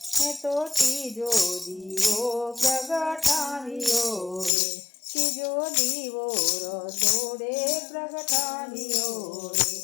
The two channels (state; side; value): drops out; right; at 4.5 s